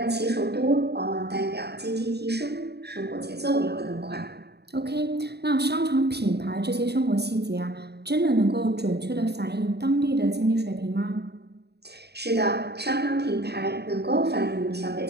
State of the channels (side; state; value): left; late; 0.48 ms